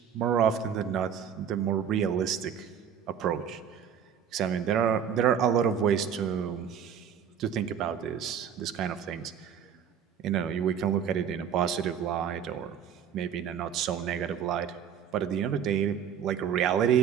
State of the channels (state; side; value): quieter; left; 8.2 dB